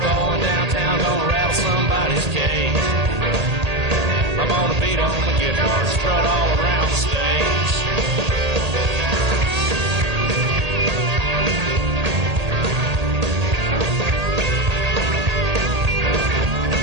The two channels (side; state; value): left; late; 1.8 ms